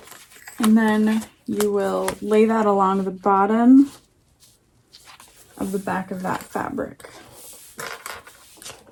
And then you will lay that along the bottom of the back of that fabric.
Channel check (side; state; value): both; identical; correlation 1.00